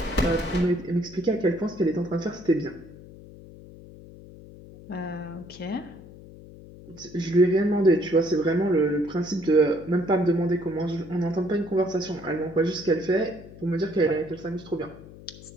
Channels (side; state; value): left; noise; hum, 18 dB below the sound